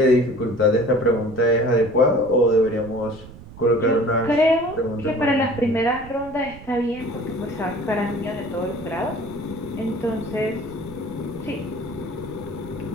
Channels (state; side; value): noise; right; rumble, 17 dB below the sound